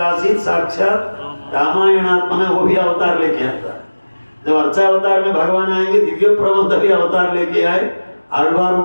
साक्षात रामायणात्मना, वो भी अवतार लेके आता है। जब अर्चा अवतार में भगवान आएंगे, दिव्य प्रबंध भी अवतार लेके आए आलवारों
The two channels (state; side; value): inverted; both; correlation -1.00